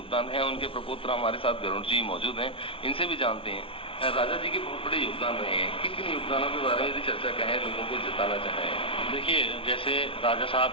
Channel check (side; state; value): right; late; 0.26 ms